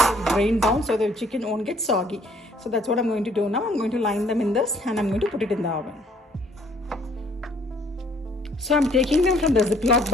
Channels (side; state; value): both; normal; correlation 0.61